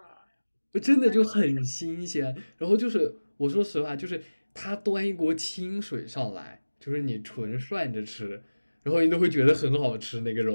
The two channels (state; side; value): inverted; both; correlation -1.00